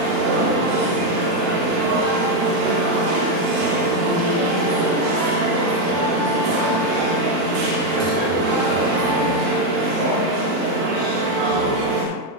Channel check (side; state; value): left; late; 40 ms